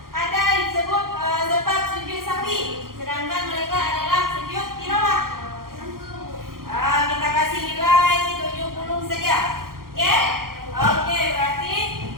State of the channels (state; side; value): late; left; 0.92 ms